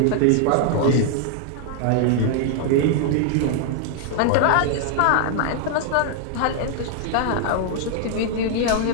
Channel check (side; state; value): both; different; correlation 0.00